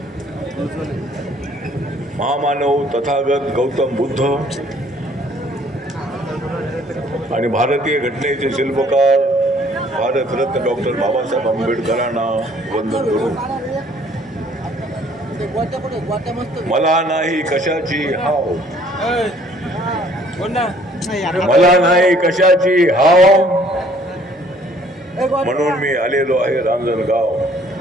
महामानव तथागत गौतम बुद्ध आणि भारतीय घटनेचे शिल्पकार भारतरत्न डॉक्टर बाबासाहेब आंबेडकरांना वंदन करून मला नाही कशाची हाव, मला नाही कशाची हाव, म्हणून मी आलेलो आहे रांजणगाव.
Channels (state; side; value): normal; both; correlation 0.59